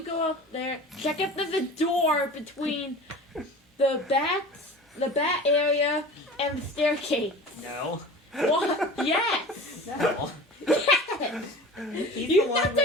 go up there, check if there's a door between the bat area, and the staircase. No. What? Yes! No. Yes! He's You've the not one done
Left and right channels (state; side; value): normal; both; correlation 0.37